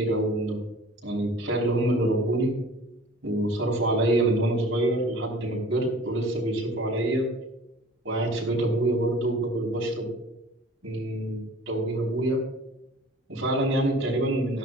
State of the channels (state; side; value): normal; both; correlation 0.46